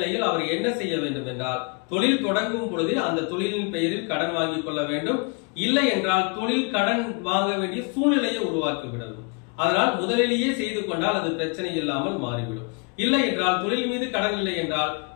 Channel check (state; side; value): quieter; right; 34.3 dB